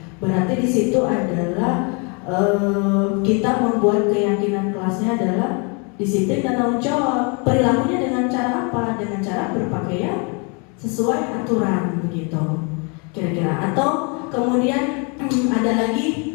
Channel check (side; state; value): right; quieter; 34.1 dB